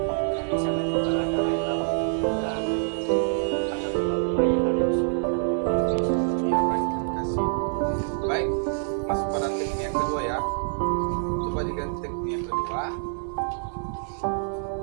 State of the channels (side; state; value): left; silent; 56 dB below the other